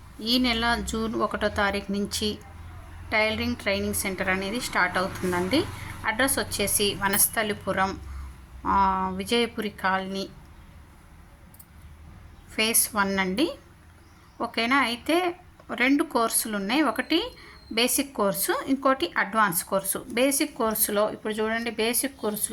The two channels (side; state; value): both; identical; correlation 1.00